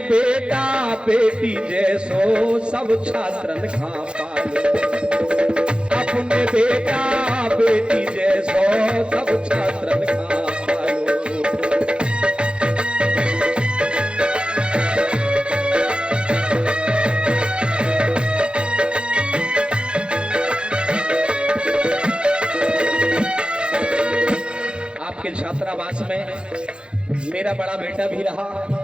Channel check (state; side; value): late; left; 0.055 ms